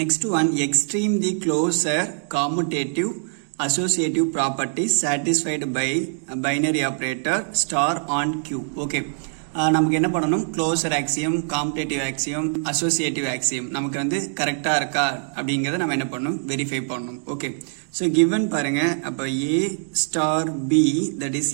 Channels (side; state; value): left; silent; digital silence